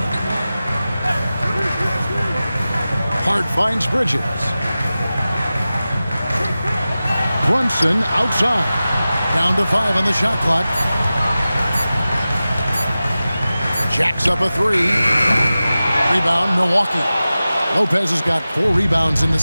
Hart finds Bridges. Brunson outside. Down to 5 on the shot clock. Jacks up a 3. Rebound, Milwaukee. Lopez has got 4 rebounds in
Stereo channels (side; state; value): both; inverted; correlation -0.95